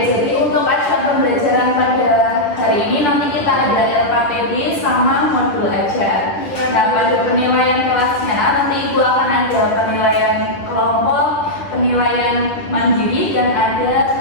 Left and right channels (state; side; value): late; right; 10 ms